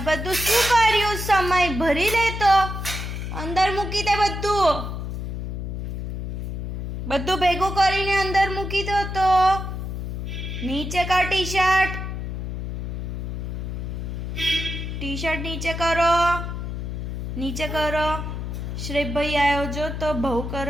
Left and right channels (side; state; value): left; noise; hum, 5 dB below the sound